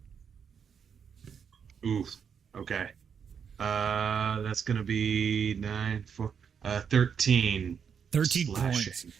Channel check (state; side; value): quieter; left; 7.1 dB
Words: Ooh, okay. That's going to be 13. 13 slashing. points.